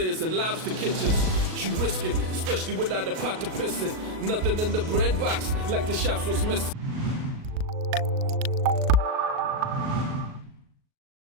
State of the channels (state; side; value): late; left; 38 ms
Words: and lobster kitchens. You risking, especially without a pot to piss in. Nothing in the bread box like the shops was missing.